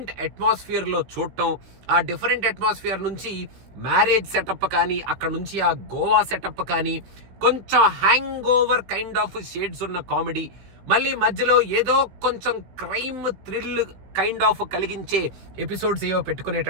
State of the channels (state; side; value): late; left; 16 ms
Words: అట్మాస్ఫియర్ లో చూడటం, ఆ డిఫరెంట్ అట్మాస్ఫియర్ నుంచి మ్యారేజ్ సెటప్ కానీ అక్కడ నుంచి ఆ గోవా సెటప్ కానీ కొంచెం hang over kind of shades ఉన్న కామెడీ, మళ్ళీ మధ్యలో ఏదో కొంచెం క్రైమ్ థ్రిల్ కైండ్ ఆఫ్ కలిగించే ఎపిసోడ్స్ ఏవో